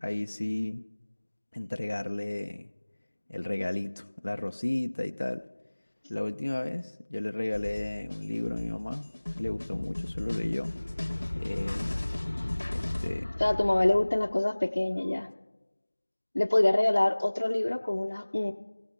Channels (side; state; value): both; inverted; correlation -1.00